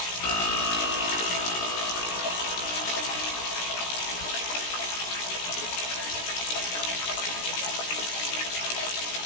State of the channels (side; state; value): right; late; 16 ms